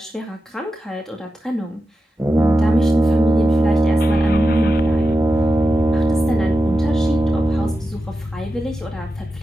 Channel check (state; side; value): normal; both; correlation 0.91